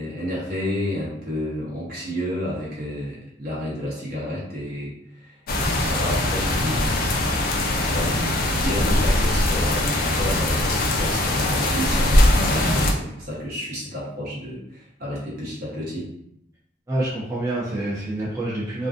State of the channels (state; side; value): normal; both; correlation 0.60